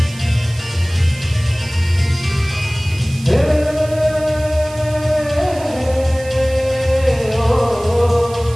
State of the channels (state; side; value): noise; right; hiss, 18 dB below the sound